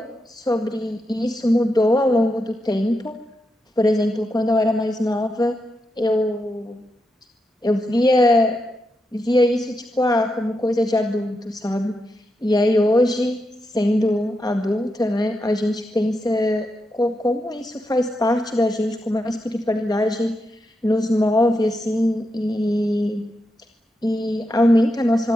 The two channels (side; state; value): both; normal; correlation 0.85